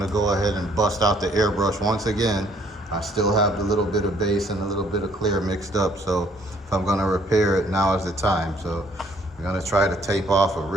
to go ahead and bust out the airbrush once again. I still have the little bit of base and a little bit of clear mixed up, so if I'm gonna repair it, now is the time. So I'm gonna try to tape off a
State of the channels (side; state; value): both; normal; correlation 0.63